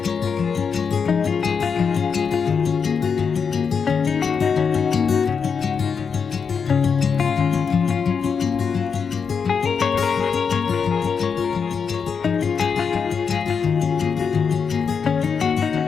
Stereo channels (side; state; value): right; quieter; 6.0 dB